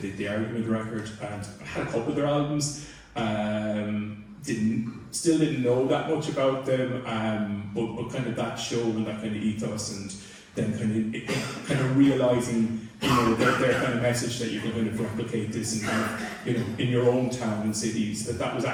the Argument record, and I had a couple of their albums. Still didn't know that much about them, but kind of that show and that kind of ethos, and then kind of realising their kind of message that you can kind of replicate this and in your own town and cities, that was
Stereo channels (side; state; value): both; identical; correlation 1.00